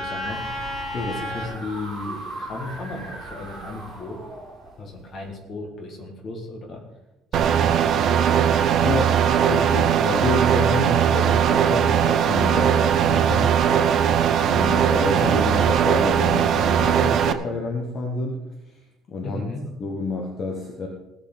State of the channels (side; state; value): left; quieter; 6.0 dB